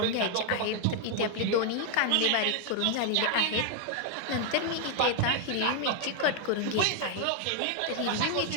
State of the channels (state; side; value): different; both; correlation 0.00